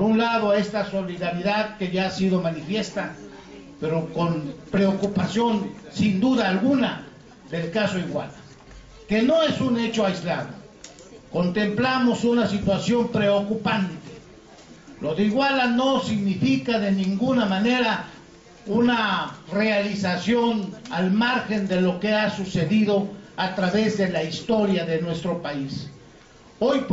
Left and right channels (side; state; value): both; identical; correlation 1.00